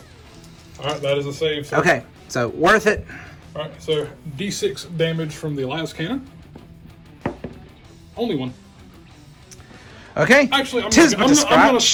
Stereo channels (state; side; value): identical; both; correlation 1.00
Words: All right, that is a save. Sir. Okay, so worth it. All right, so D6 damage from the las cannon. Only one. Okay. Actually, I'm Tis going but a to scratch.